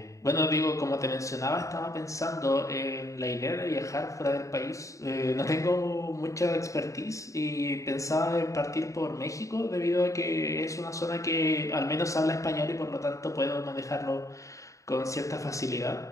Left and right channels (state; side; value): late; right; 0.15 ms